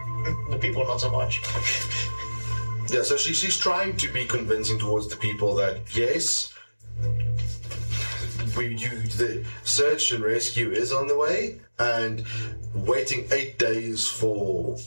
The people not so much. Yeah, so she's trying to be convincing towards the people that yes, the search and rescue is on the way, and waiting 8 days for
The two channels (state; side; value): inverted; both; correlation -1.00